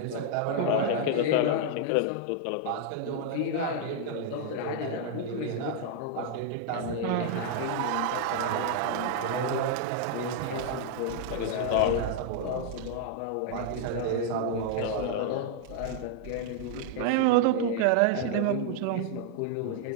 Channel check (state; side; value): different; both; correlation -0.01